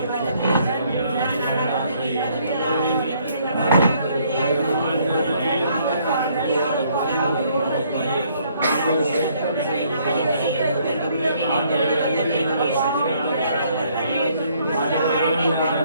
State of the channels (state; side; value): inverted; both; correlation -0.66